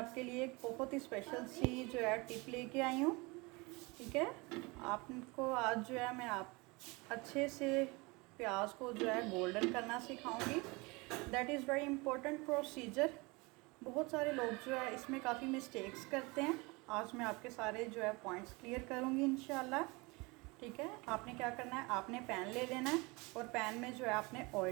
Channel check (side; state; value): left; quieter; 26.0 dB